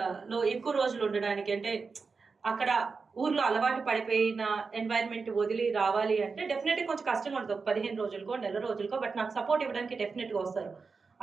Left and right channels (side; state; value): left; quieter; 4.7 dB